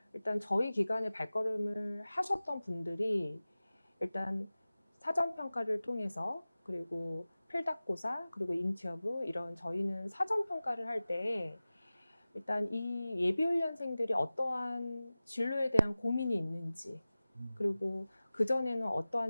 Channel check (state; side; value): inverted; both; correlation -0.97